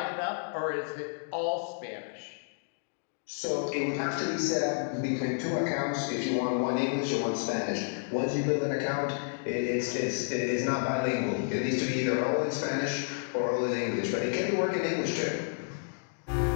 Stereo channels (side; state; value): right; silent; digital silence